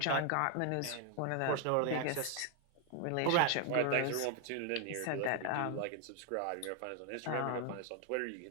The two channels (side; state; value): both; different; correlation 0.00